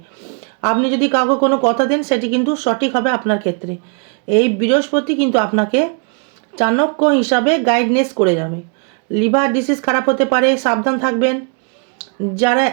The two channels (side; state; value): left; quieter; 39.9 dB